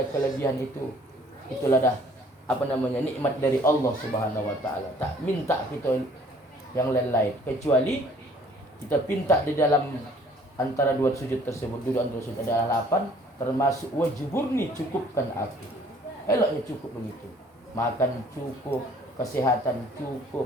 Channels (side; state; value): both; normal; correlation 0.56